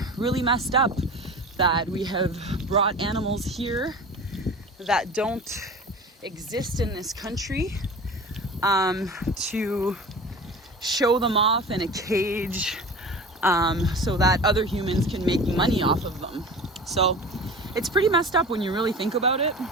really messed up that we have brought animals here that don't exist in this country to show them off in a cage so that other humans can make money off of them. So it's pretty messed up when you really think about it.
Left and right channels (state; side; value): normal; both; correlation 0.35